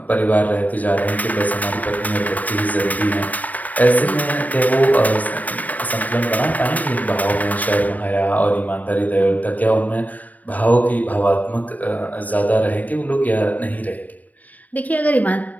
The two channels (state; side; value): late; right; 0.076 ms